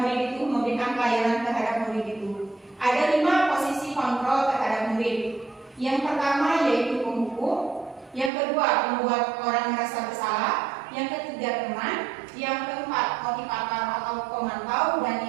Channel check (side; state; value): left; drops out; at 8.3 s